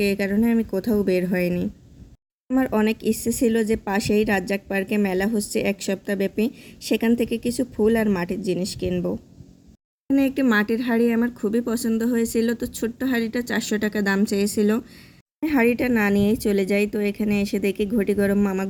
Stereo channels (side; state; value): both; identical; correlation 1.00